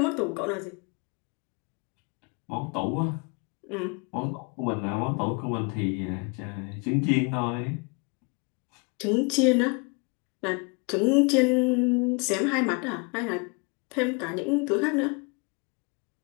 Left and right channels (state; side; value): quieter; right; 32.3 dB